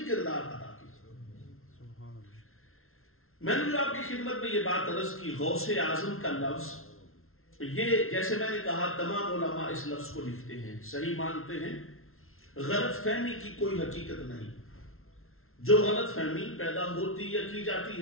کردار ادا کیا۔ میں نے جو آپ کی خدمت میں یہ بات عرض کی، غوث اعظم کا لفظ، یہ جیسے میں نے کہا تمام علماء اس لفظ کو لکھتے ہیں، صحیح مانتے ہیں، غلط فہمی کی کوئی حقیقت نہیں، جو غلط فہمی پیدا ہوتی یا کی جاتی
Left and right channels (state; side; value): late; right; 0.62 ms